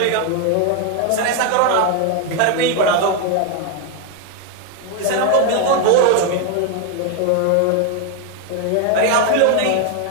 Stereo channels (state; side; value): different; both; correlation 0.01